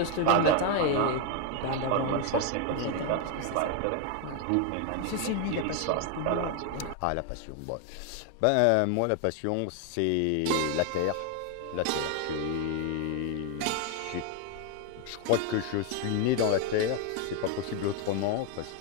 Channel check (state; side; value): different; both; correlation 0.01